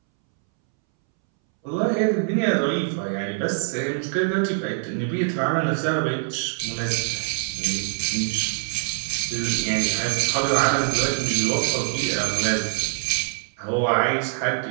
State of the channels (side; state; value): left; silent; 63 dB below the other